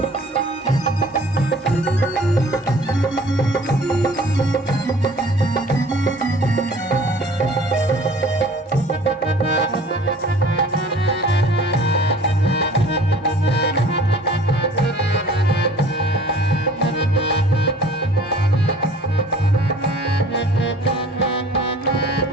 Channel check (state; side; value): normal; both; correlation 0.49